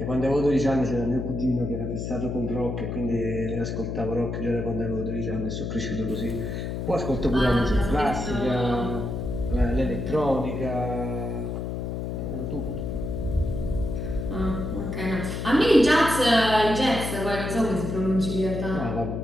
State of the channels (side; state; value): left; noise; hum, 4 dB below the sound